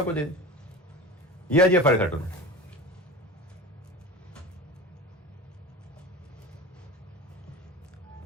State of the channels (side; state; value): both; normal; correlation 0.32